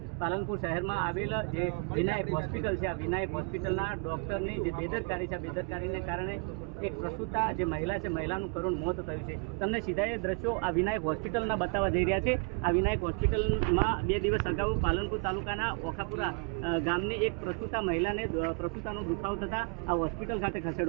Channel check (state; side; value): quieter; left; 34.5 dB